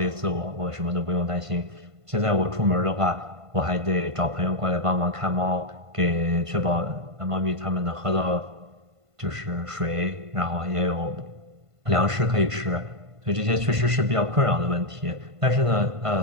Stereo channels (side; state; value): left; late; 1.5 ms